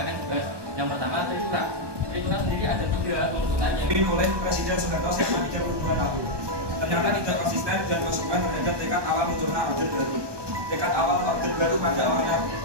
akan dibahas. Yang pertama, Trikula. Trikula sendiri ada 3 tuntutannya. Dipimpin oleh Presiden Soekarno selama 32 tahun. Ternyata tidak konsisten dan konsekuen terhadap tekad awal munculnya Orde Baru. Tekad awal Orde Baru pada awalnya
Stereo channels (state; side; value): late; left; 1.2 ms